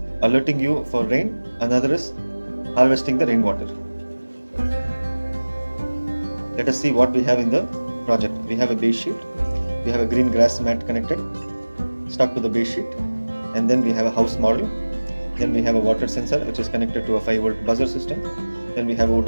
alerting you for rain, another is harvesting the rainwater. Let us see what we have in the project. We have a base sheet. We have a green grass mat connected, stuck to the base sheet. And then we have a house model. Then we have a water sensor which is connected to a 5-volt buzzer system. Then we have a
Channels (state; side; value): inverted; both; correlation -1.00